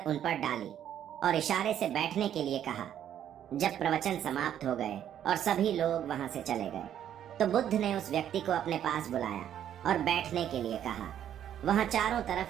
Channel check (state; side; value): quieter; left; 10.3 dB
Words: उन पर डाली और इशारे से बैठने के लिए कहा। जब प्रवचन समाप्त हो गए और सभी लोग वहां से चले गए तो बुद्ध ने उस व्यक्ति को अपने पास बुलाया और बैठने के लिए कहा। वहां चारों